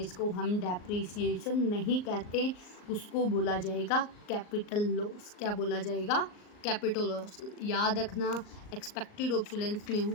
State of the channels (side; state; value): right; late; 39 ms